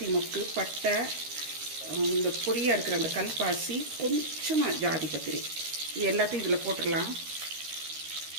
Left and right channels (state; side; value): late; left; 13 ms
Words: மொக்கு, பட்டை, இந்த பொடியாக இருக்கிற அந்த கல்பாசி, கொஞ்சமாக ஜாதி பத்திரி, இது எல்லாத்தையும் இதில் போட்டுடலாம்.